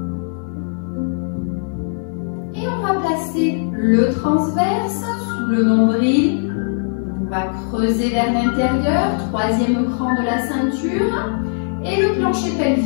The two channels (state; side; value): silent; right; 57 dB below the other